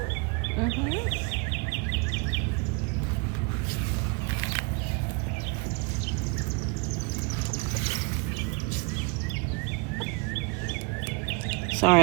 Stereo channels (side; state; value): left; quieter; 29.4 dB